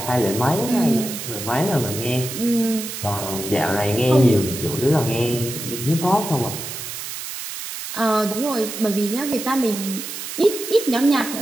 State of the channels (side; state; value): right; noise; hiss, 8 dB below the sound